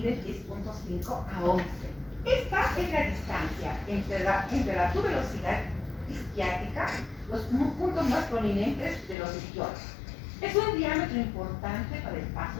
10,5 a 11. Esta es la distancia entre la tuberosidad isquiática, los puntos más prominentes de los isquiones. Es un diámetro importante para el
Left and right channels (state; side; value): drops out; right; at 9.2 s